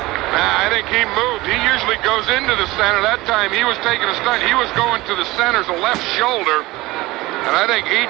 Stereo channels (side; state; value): left; quieter; 19.7 dB